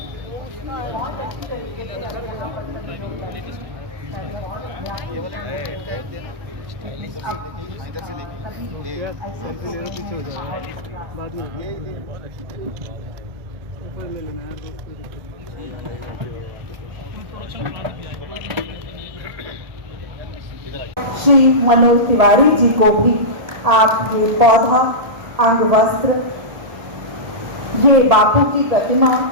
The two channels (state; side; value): late; left; 1.7 ms